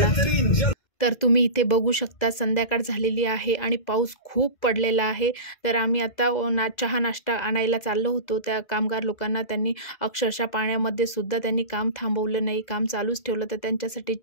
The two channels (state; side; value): late; right; 2.0 ms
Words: तर तुम्ही इथे बघू शकता संध्याकाळ झालेली आहे आणि पाऊस खूप पडलेला आहे. तर आम्ही आता चहा नाश्ता आणायला चाललो होतो. त्या कामगार लोकांना त्यांनी अक्षरशः पाण्यामध्ये सुद्धा त्यांनी काम थांबवलं नाही, काम चालूच ठेवलं. तर त्यांच्यासाठी